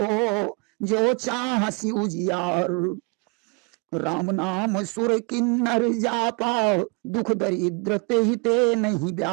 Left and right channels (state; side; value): quieter; left; 32.7 dB